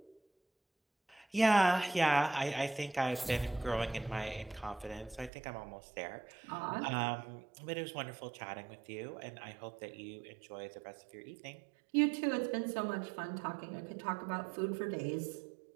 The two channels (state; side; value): drops out; left; at 5.3 s